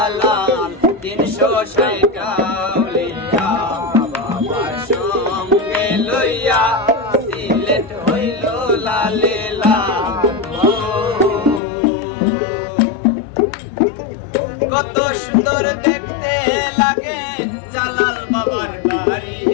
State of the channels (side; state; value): right; drops out; at 11.6 s